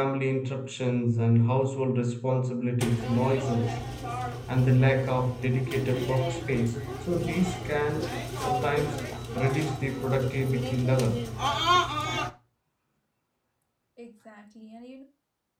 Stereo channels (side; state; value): both; identical; correlation 1.00